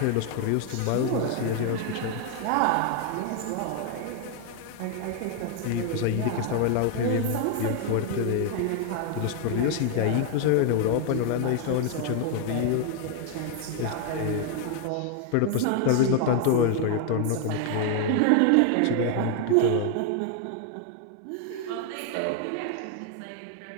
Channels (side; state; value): both; different; correlation 0.00